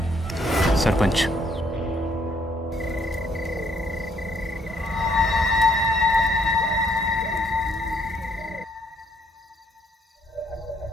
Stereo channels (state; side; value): normal; both; correlation 0.67